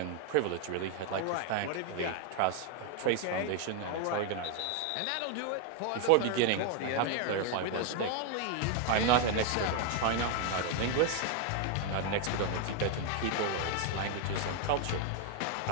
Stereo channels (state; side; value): different; both; correlation 0.01